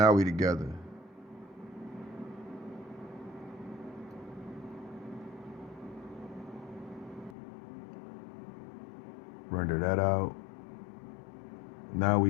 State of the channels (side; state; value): right; drops out; at 7.4 s